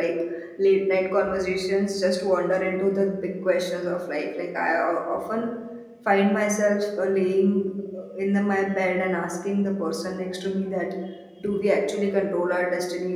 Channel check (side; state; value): both; identical; correlation 1.00